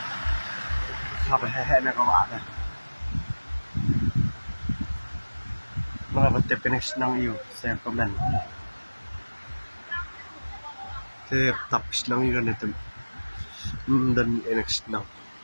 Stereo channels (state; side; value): inverted; both; correlation -1.00